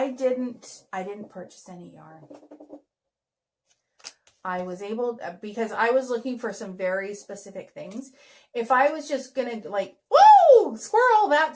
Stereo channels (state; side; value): identical; both; correlation 1.00